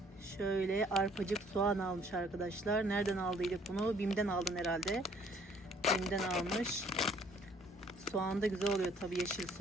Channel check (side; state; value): both; normal; correlation 0.60